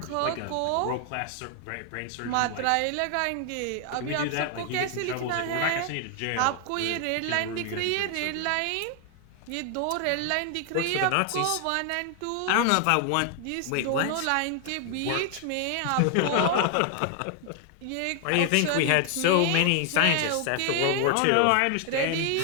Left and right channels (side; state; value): both; different; correlation 0.00